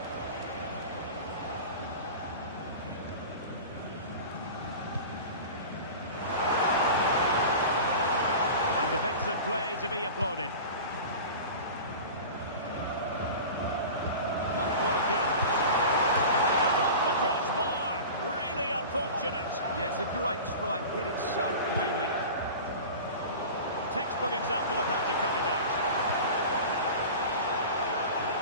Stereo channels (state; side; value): inverted; both; correlation -0.34